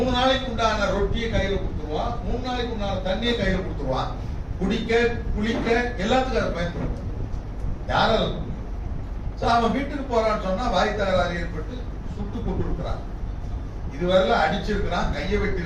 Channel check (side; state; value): both; identical; correlation 1.00